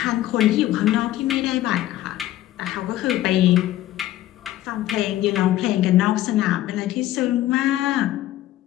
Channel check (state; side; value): quieter; right; 14.3 dB